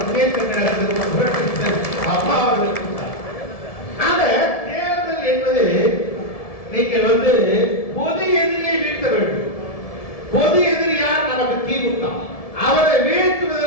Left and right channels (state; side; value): late; right; 1.7 ms